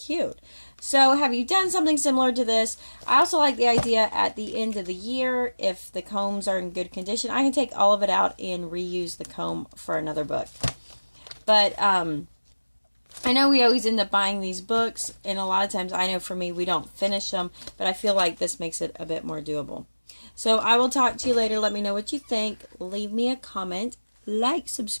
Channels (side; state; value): both; inverted; correlation -1.00